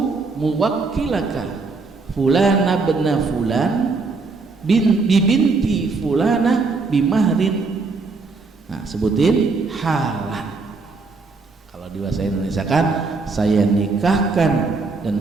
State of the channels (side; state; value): left; quieter; 4.1 dB